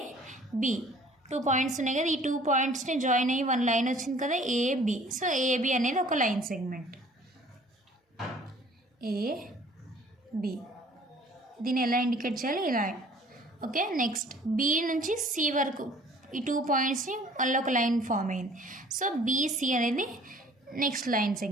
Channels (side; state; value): both; normal; correlation 0.53